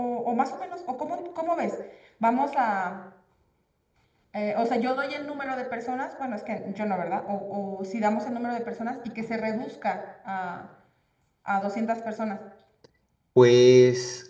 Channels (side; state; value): both; identical; correlation 1.00